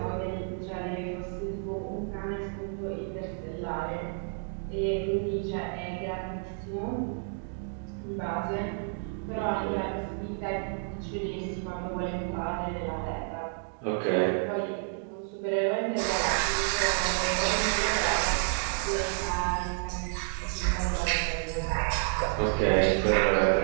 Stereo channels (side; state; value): left; silent; 58 dB below the other